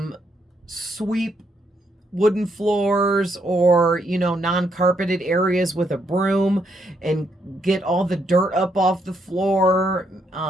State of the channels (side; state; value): both; normal; correlation 0.76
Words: Sweep wooden floors, or, you know, non-carpeted areas with a broom, and get all the dirt up off the floor.